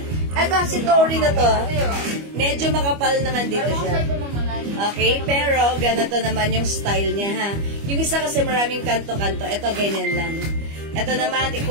Ito, si Tori na to. Medyo makapal naman dito siya. Okay, pero ganito naman yung style niya, ha. Yung isa kasi maraming kanto-kanto. Ito, ganyan lang. Ito naman,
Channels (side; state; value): left; late; 25 ms